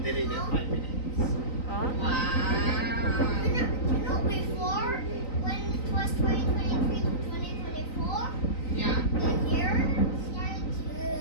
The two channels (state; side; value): late; right; 3.9 ms